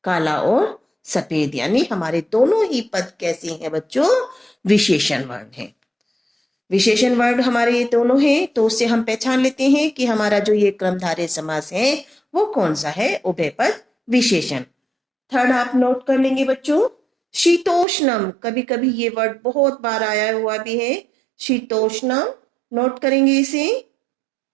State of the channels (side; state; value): left; drops out; at 17.9 s